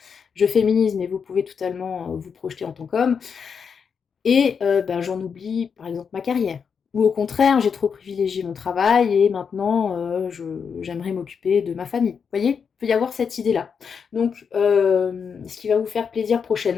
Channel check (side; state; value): right; quieter; 6.4 dB